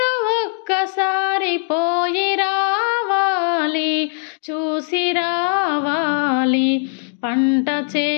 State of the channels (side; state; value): right; silent; digital silence